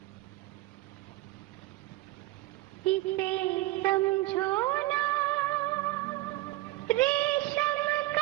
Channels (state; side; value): quieter; left; 18.5 dB